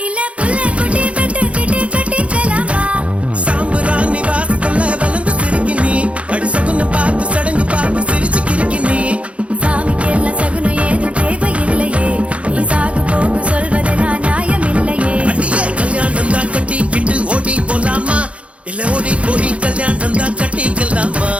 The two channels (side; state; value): left; late; 0.062 ms